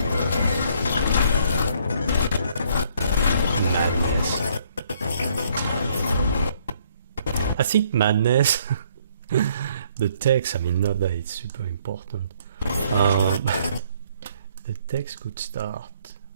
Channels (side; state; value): both; inverted; correlation -0.65